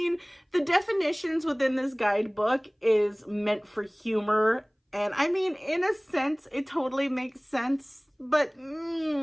the definitions within this guidebook is meant for humor. And I mean, in a sense, it totally makes sense. But,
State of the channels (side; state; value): both; identical; correlation 1.00